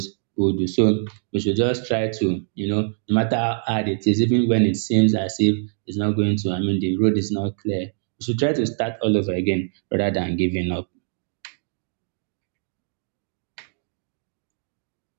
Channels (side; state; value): left; silent; 60 dB below the other